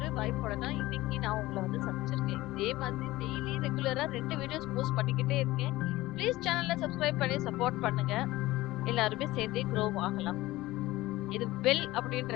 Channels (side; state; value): right; quieter; 18.0 dB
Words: வாய்ப்போட தான் இன்னைக்கு நான் உங்கள வந்து சந்திச்சிருக்கேன். இதே மாதிரி டெய்லி ரெகுலரா 2 வீடியோஸ் போஸ்ட் பண்ணிக்கிட்டே இருக்கேன். ப்ளீஸ் சேனல சப்ஸ்கிரைப் பண்ணி சப்போர்ட் பண்ணுங்க. எல்லாருமே சேர்ந்தே க்ரோ ஆகலாம். இது பெல்